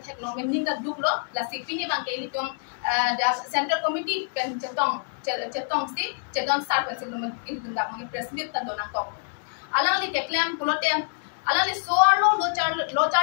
theklong men ninga duklo la sipi ni bang ke ili tum the central committee kan chetong sar kan silum ili tum dak mang president tan dona kok alang ni ke claim pulo te alang ni soarlo lo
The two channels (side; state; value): right; silent; digital silence